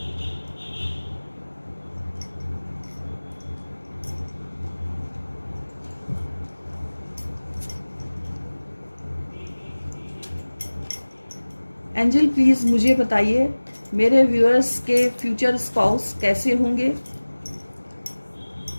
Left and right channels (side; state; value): both; inverted; correlation -1.00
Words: एंजल प्लीज मुझे बताइए मेरे व्यूअर्स के फ्यूचर स्पाउस कैसे होंगे,